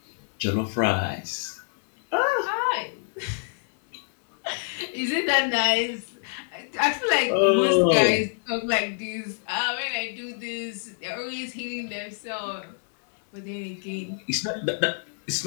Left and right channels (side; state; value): right; silent; digital silence